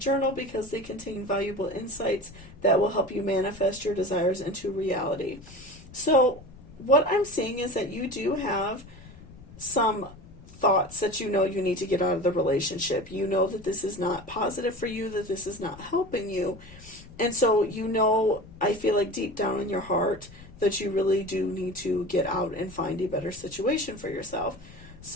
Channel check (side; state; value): left; noise; rumble, 19 dB below the sound